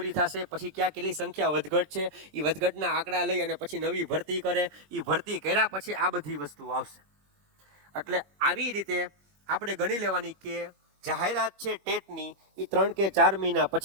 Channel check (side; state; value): left; late; 21 ms